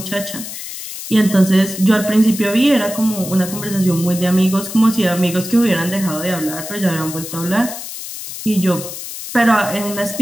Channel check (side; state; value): left; noise; hiss, 9 dB below the sound